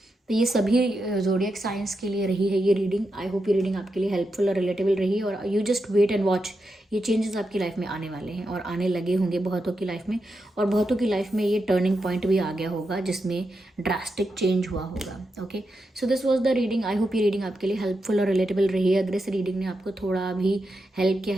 तो ये सभी ज़ोडिएक साइंस के लिए रही है ये रीडिंग। आई होप ये रीडिंग आपके लिए हेल्पफुल और रिलेटेबल रही, और you just wait and watch, ये चेंजेस आपकी लाइफ में आने वाले हैं और आने लगे होंगे बहुतों की लाइफ में, और बहुतों की लाइफ में ये टर्निंग पॉइंट भी आ गया होगा जिसमें ड्रास्टिक चेंज हुआ होगा। Okay, so this was the reading. I hope ये रीडिंग आपके लिए हेल्पफुल और रिलेटेबल रही है। अगर इस रीडिंग ने आपको थोड़ा भी हेल्प किया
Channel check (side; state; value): both; normal; correlation 0.86